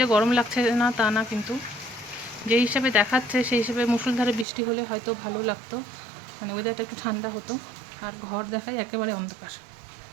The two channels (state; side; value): drops out; left; at 4.5 s